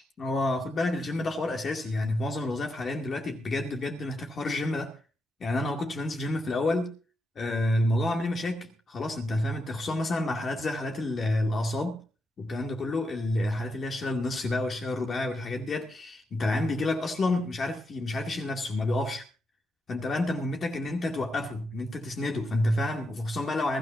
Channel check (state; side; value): normal; both; correlation 0.84